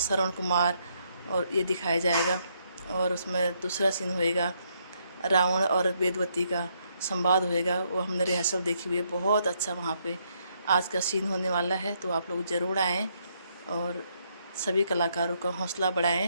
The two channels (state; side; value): inverted; both; correlation -0.74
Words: कुमार और ये दिखाया जाएगा। और उसमें दूसरा सीन होएगा रावण और वेदवती का संवाद होएगा, वो हमने रिहर्सल देखी हुई है, बहुत अच्छा वहाँ पे आज का सीन होने वाला है। तो आप लोग ज़रूर आएँ और सभी कलाकारों का हौसला